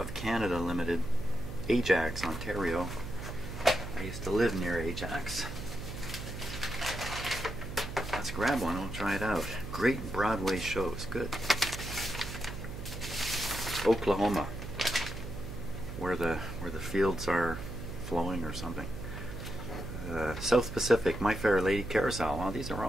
Canada Limited, Ajax, Ontario. I used to live near Ajax. Let's grab one, we'll try it out. Great Broadway shows, good. Oklahoma, where the fields are flowing or something. South Pacific, My Fair Lady, Carousel. Well, these are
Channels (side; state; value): right; noise; hum, 8 dB below the sound